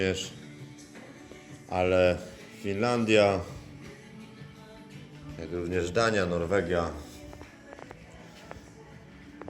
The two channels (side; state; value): both; identical; correlation 1.00